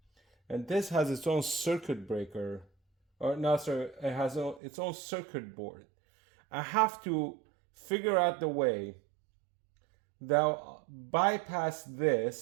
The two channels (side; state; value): left; drops out; at 4.6 s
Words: and this has its own circuit breaker, or no, sorry, it has its own circuit board. I have to figure out the way that I'll bypass